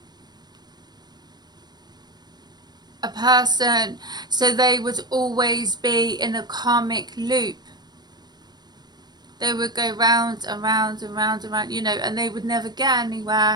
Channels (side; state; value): left; late; 0.20 ms